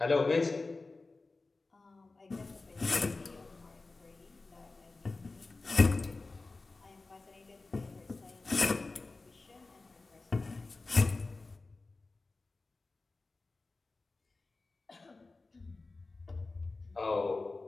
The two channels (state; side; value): quieter; right; 3.5 dB